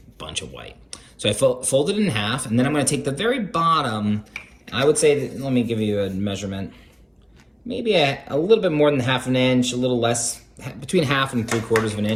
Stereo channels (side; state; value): both; identical; correlation 1.00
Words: bunch of white. So I fold it in half, and then I'm going to take the very bottom. I would say, that, let me give you a measurement, maybe a little bit more than ½ an inch, a little less, between 1/2 and 3/4 of an